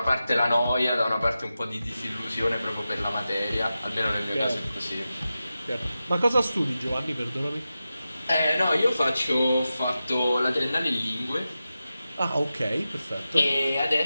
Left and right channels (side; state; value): both; inverted; correlation -0.92